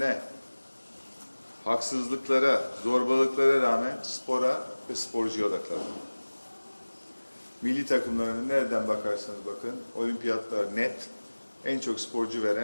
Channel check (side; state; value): both; inverted; correlation -1.00